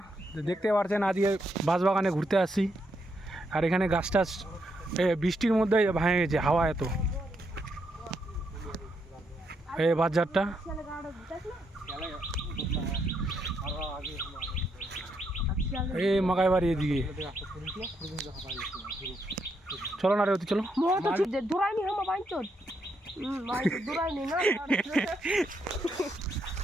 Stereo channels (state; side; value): normal; both; correlation 0.78